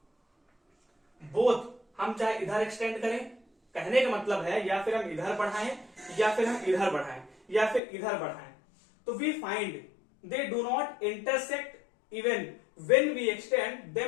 बोथ हम चाहे इधर एक्सटेंड करें, कहने का मतलब है या फिर हम इधर बढ़ाएं या फिर हम इधर बढ़ाएं या फिर इधर बढ़ाएं, तो we find they do not intersect even when we extend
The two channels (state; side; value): drops out; right; at 7.8 s